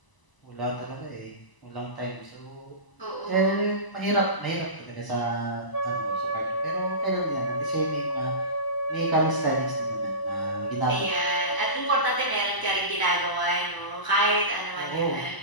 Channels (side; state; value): right; late; 1.0 ms